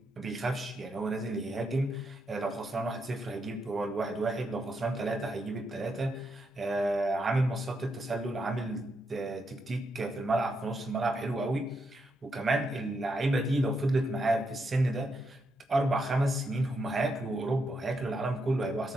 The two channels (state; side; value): normal; both; correlation 0.81